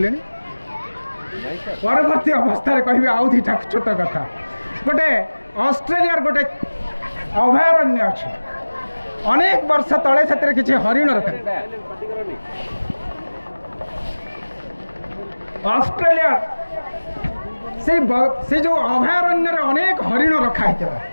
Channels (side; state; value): both; inverted; correlation -1.00